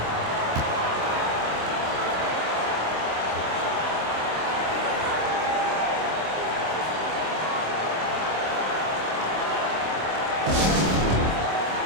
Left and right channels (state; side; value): late; left; 26 ms